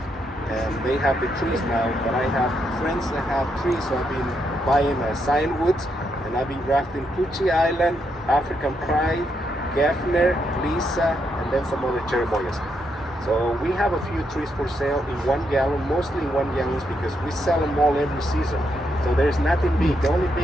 And they have the trees now, but I have friends that have trees, so I've been buying cyan woods, and I've been grafting Kochi Island, African Pride, Geffner, Lisa, and then some other cherimoyas. So we have a few trees for sale in 1 gallon, mostly in 1 gallons because we sell them all every season. So there's nothing big. The only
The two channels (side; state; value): both; normal; correlation 0.79